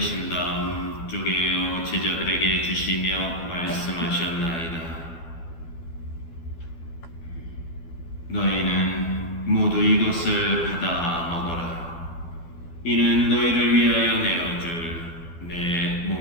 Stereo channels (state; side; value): late; right; 12 ms